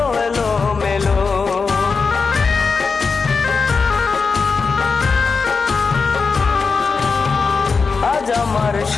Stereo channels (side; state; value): right; quieter; 4.8 dB